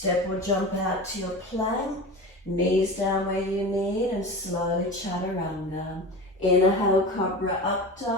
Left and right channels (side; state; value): both; normal; correlation 0.30